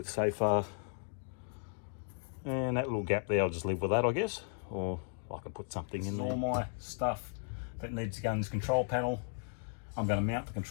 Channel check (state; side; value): silent; right; digital silence